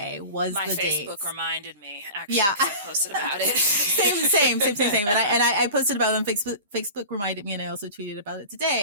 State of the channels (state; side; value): inverted; both; correlation -0.35